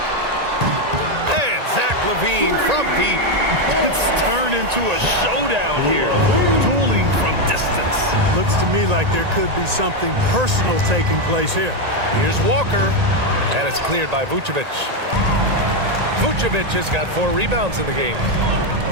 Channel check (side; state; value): left; late; 1.9 ms